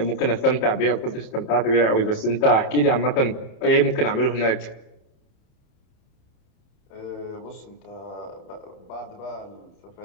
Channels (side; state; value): right; late; 30 ms